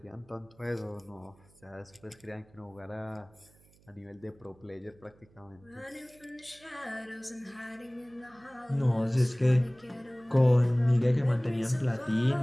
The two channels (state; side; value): noise; right; hum, 29 dB below the sound